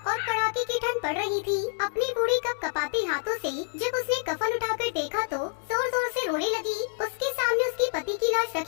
और कड़ाके की ठंड पड़ रही थी। अपने बूढ़े कप कपाते हाथों से जब उसने कफन उठाकर देखा तो जोर जोर से रोने लगी। उसके सामने उसके पति की लाश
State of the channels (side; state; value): right; silent; digital silence